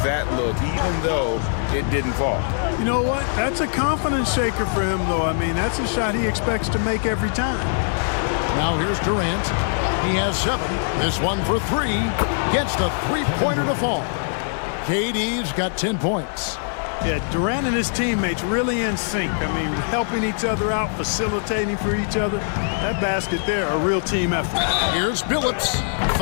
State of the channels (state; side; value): silent; right; digital silence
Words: that look, even though it didn't fall. You know what? That's a confidence shaker for him, though. I mean, that's a shot he expects to make every time. Now here's Durant. He has 7. This one for 3. Gets the three-pointer to fall. KD's got 10 points. Yeah, Durant and his teammates really in sync. I mean, helping each other out, facilitating for each other. That basket there, a real team effort. Here's Billups.